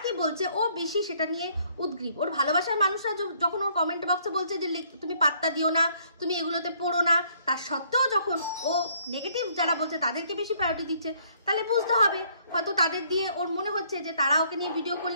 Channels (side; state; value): both; inverted; correlation -0.65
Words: কি বলছে ও বেশি সেটা নিয়ে উদ্গ্রীব। ওর ভালোবাসার মানুষরা যখন ওর কমেন্ট বক্সে বলছে যে তুমি পাত্তা দিও না, তুমি এগুলোতে পড়ো না, তার সত্ত্বেও যখন ও নেগেটিভ যারা বলছে তাদেরকে বেশি প্রায়োরিটি দিচ্ছে, তাহলে বুঝতে হবে হয়তো তাদের দিয়ে ওর মনে হচ্ছে যে তারা ওকে নিয়ে ভিডিও